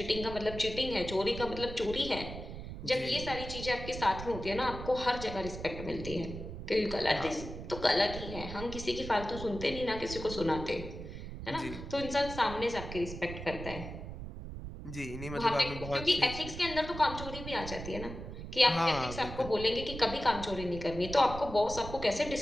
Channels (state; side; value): noise; right; rumble, 9 dB below the sound